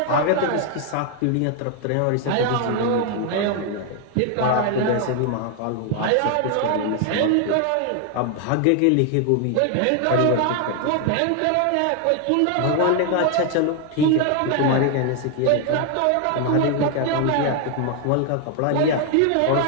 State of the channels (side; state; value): both; different; correlation 0.00